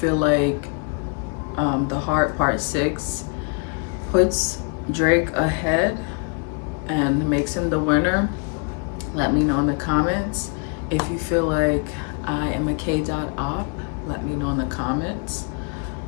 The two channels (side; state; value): right; quieter; 37.3 dB